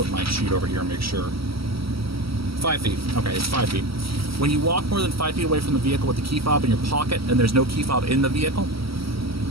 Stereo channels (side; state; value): left; late; 0.75 ms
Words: my sheet over here and make sure. 5 feet. Okay, it's 5 feet. When you walk more than 5 feet away from the vehicle with the key fob in your pocket and there's no key fob in the vehicle,